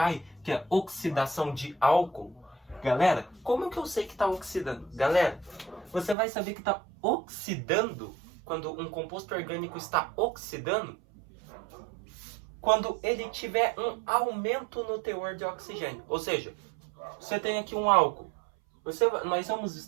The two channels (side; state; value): left; drops out; at 6.2 s